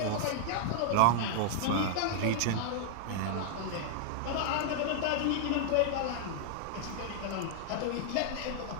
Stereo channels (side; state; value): both; different; correlation 0.00